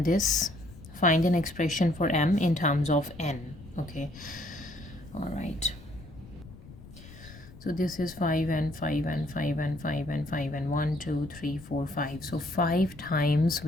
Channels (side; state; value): left; noise; rumble, 19 dB below the sound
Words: this. Find an expression for m in terms of n. Okay, all right. So this is 5 and 5 and 5 and 5 and 5 and 1, 2, 3, 4, 5. So 5 times